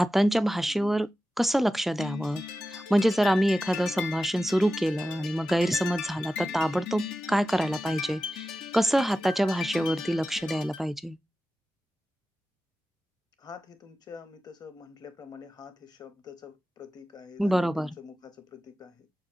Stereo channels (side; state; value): both; normal; correlation 0.93